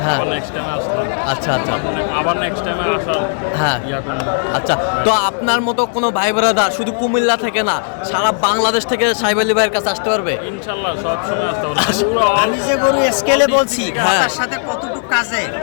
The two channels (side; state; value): right; silent; 69 dB below the other